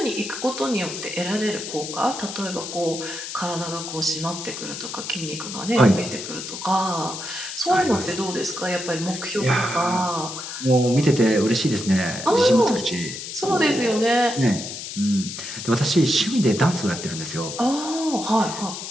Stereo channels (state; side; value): noise; left; hiss, 8 dB below the sound